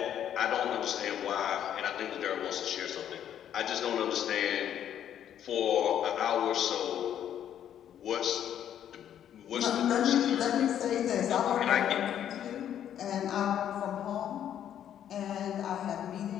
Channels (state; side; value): quieter; right; 10.1 dB